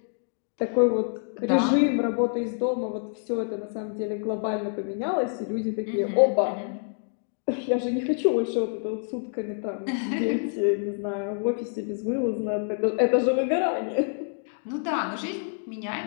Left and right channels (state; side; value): silent; right; digital silence